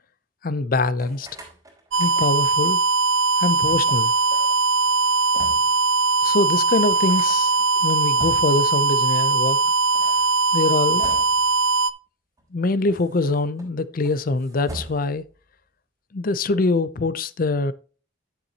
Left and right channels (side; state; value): both; normal; correlation -0.12